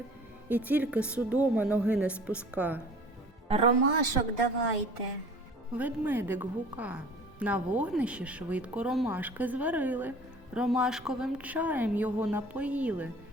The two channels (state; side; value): normal; both; correlation 0.46